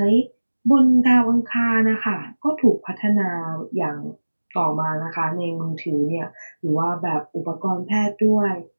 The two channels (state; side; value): inverted; both; correlation -1.00